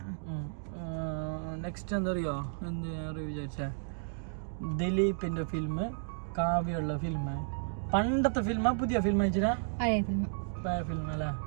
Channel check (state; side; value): silent; left; digital silence